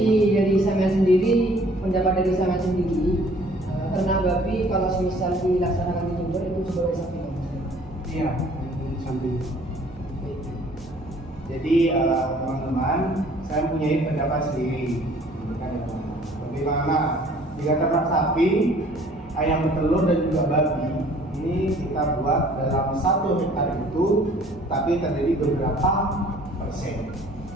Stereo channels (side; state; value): both; normal; correlation 0.55